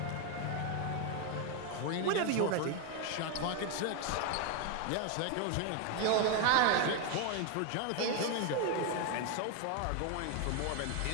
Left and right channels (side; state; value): both; different; correlation 0.01